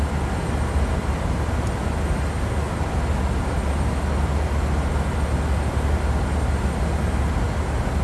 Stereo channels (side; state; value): both; identical; correlation 1.00